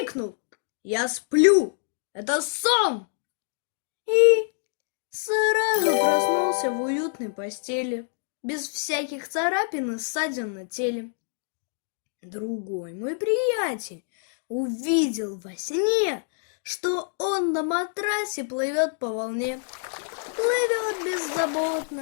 «Я сплю! Это сон!» И сразу проснулся в уютной постели, без всяких царапин и ссадин на теле. Другой мой приятель увидел во сне, что он на матрасе плывет по волне. Плывет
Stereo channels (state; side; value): silent; right; digital silence